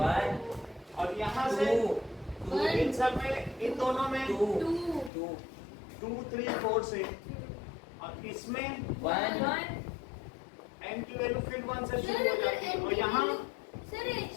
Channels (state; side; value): drops out; right; at 5.1 s